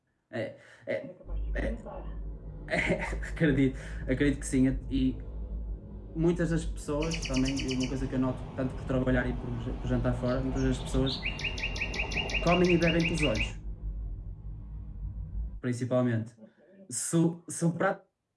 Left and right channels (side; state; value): both; identical; correlation 1.00